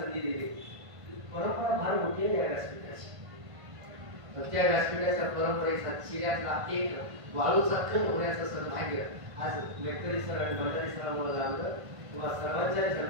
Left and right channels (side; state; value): left; late; 1.5 ms